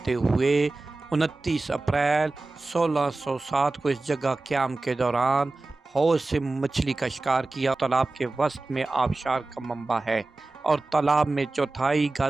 हुए 29 अप्रैल 1607 को इस जगह क़याम के दौरान हौज़ से मछली का शिकार किया। तालाब के वस्त में आबशार का मंबा है और तालाब में 4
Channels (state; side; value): quieter; left; 3.2 dB